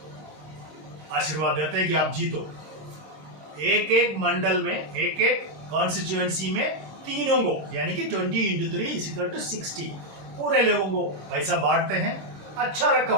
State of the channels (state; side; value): late; left; 26 ms